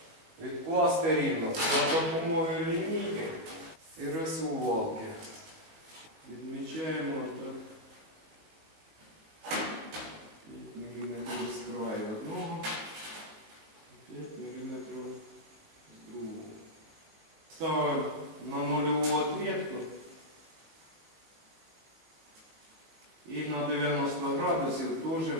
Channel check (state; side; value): late; left; 19 ms